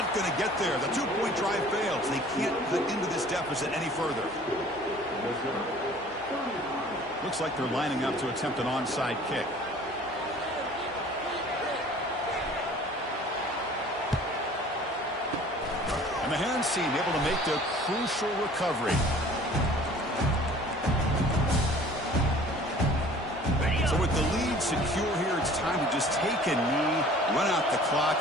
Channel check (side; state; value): both; normal; correlation 0.49